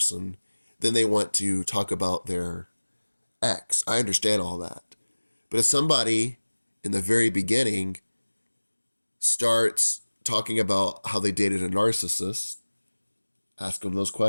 then they want to talk about their ex. I understand all that. But if somebody in the very beginning starts talking about how they dated a narcissist, ask them those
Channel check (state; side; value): inverted; both; correlation -1.00